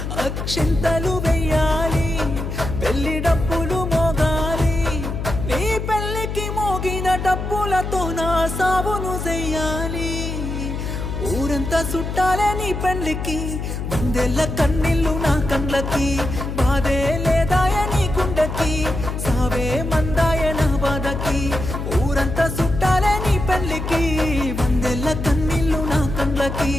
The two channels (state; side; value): noise; left; hum, 4 dB below the sound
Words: అక్షింతలు వెయ్యాలి, పెళ్లి డప్పులు మోగాలి, నీ పెళ్లికి మోగిన డప్పులతో నా సావును చెయ్యాలి. ఊరంతా చుట్టాలే నీ పెళ్లికి, వందెల్ల కన్నీళ్ళు నా కళ్ళకి, బాధే లేదాయ నీ గుండెకి, సావే మందాయ నా బాధకి. ఊరంతా చుట్టాలే నీ పెళ్లికి, వందెల్ల కన్నీళ్ళు నా కళ్ళకి,